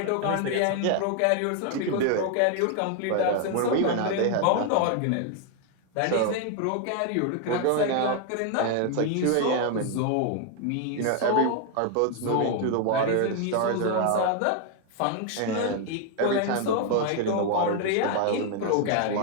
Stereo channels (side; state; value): both; different; correlation 0.00